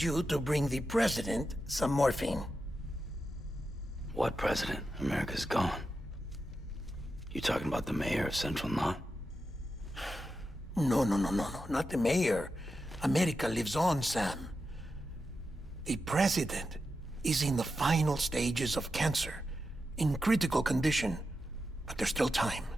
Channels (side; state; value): both; normal; correlation 0.89